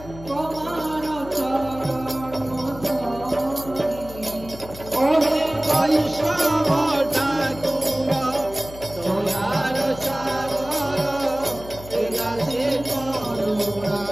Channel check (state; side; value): noise; left; hum, 15 dB below the sound